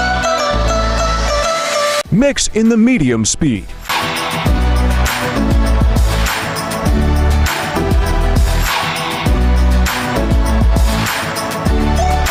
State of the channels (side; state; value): both; identical; correlation 1.00